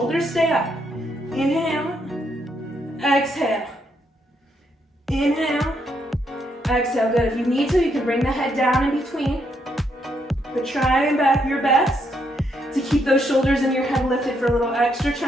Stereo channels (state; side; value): normal; both; correlation 0.76